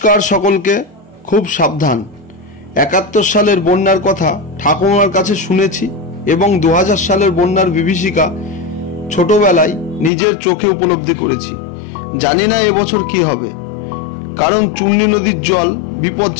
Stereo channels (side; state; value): right; drops out; at 10.1 s